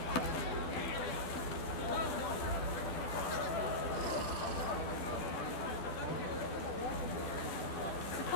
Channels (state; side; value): late; right; 12 ms